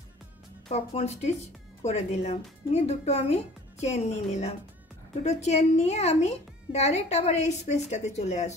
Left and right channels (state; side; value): normal; both; correlation 0.48